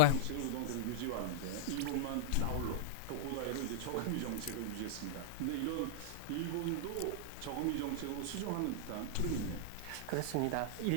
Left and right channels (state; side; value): different; both; correlation -0.02